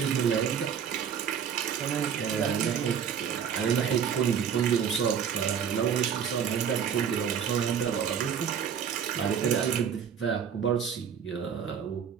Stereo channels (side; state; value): left; quieter; 7.8 dB